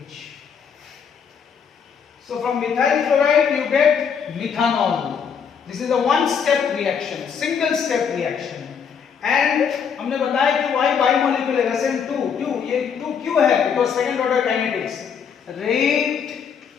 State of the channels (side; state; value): right; quieter; 7.0 dB